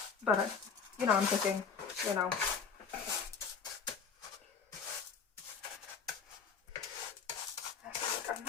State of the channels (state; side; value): quieter; right; 6.1 dB